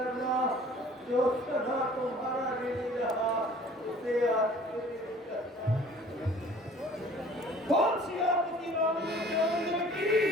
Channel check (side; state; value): both; normal; correlation 0.50